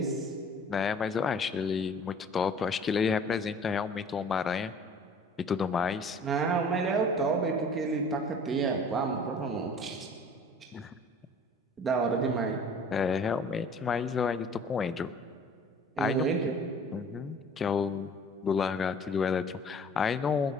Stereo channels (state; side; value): normal; both; correlation 0.49